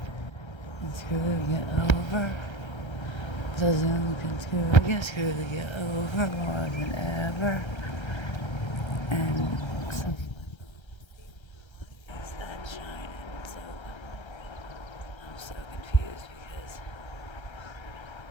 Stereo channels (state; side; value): late; right; 1.3 ms